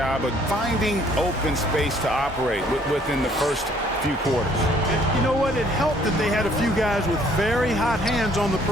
of finding open space to operate within the first few quarters. You know what? It helped that they had a few guys with very hot hands on the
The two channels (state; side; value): normal; both; correlation 0.61